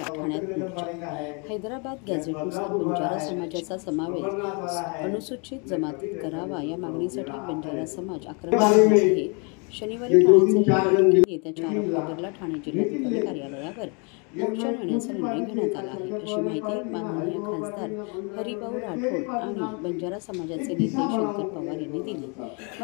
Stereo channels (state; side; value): quieter; right; 34.2 dB